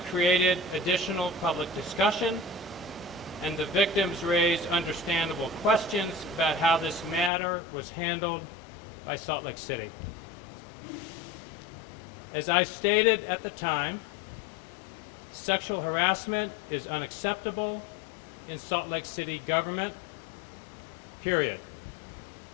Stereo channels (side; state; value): right; drops out; at 7.3 s